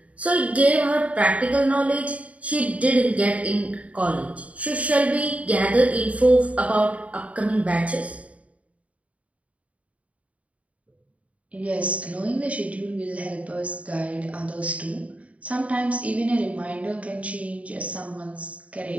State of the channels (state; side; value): late; left; 0.067 ms